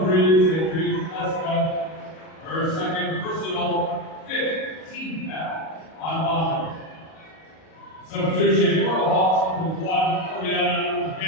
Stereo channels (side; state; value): right; late; 37 ms